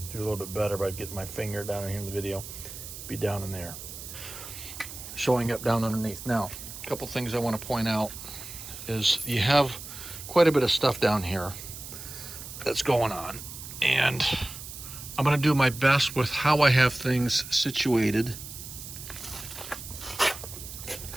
do a little bit better by getting my finger down in here in the video, be down in there, showing up down underneath. Now, a couple things I want to point out is you have quite a bit of stuff down here that's going on, and I'm going to do my best with how I have things situated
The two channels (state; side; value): noise; right; hiss, 11 dB below the sound